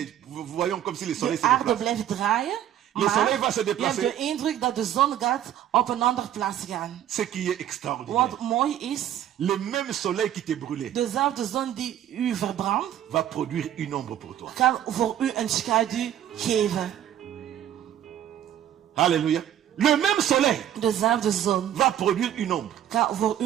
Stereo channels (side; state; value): left; quieter; 11.1 dB